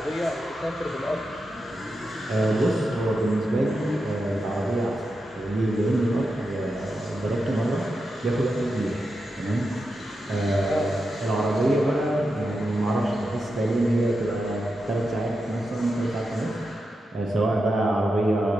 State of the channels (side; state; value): both; normal; correlation 0.88